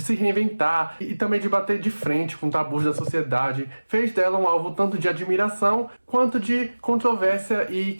se reinventar e também de bater de frente com tabus da sociedade fez dela um alvo tanto de admiração quanto de controvérsia e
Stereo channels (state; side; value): inverted; both; correlation -1.00